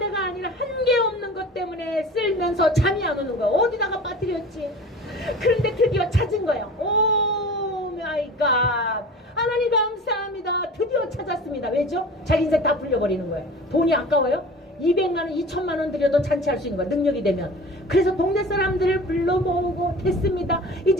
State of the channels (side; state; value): both; normal; correlation 0.39